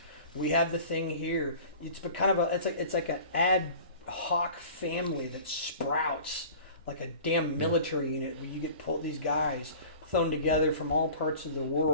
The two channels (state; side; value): inverted; both; correlation -0.42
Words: We have the thing here. It's kind of it's like an ad hoc family that sprouts like a damn military unit where you get these guys thrown together from all parts of the